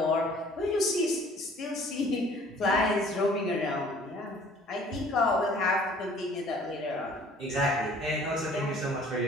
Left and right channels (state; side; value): normal; both; correlation 0.53